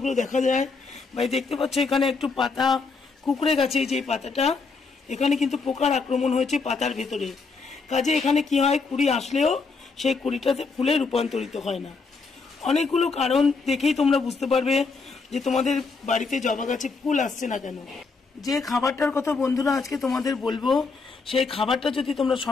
দেখা যায়। ভাই দেখতে পাচ্ছ এখানে একটু পাতা কুকড়ে গেছে, যে পাতাটা এখানে কিন্তু পোকার আক্রমণ হয়েছে পাতার ভেতরে। কাজে এখানে কি হয়, কুড়ি আসলেও সেই কুড়িটাতে ফুলে রূপান্তরিত হয় না। অনেকগুলো কারণ দেখেই তোমরা বুঝতে পারবে যে তোমাদের বাড়িতে জবা গাছে ফুল আসছে না কেন। যে খাবারটার কথা বন্ধুরা আজকে তোমাদের বলবো, সেই খাবারটা যদি তোমরা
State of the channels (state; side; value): quieter; right; 4.4 dB